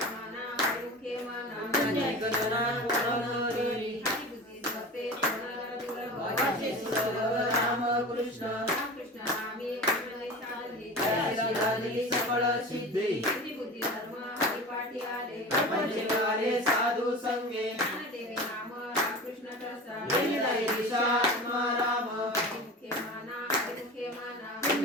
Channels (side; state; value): both; normal; correlation 0.33